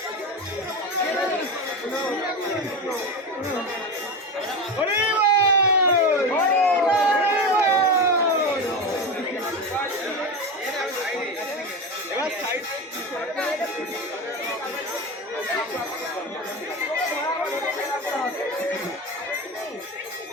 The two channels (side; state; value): both; normal; correlation 0.21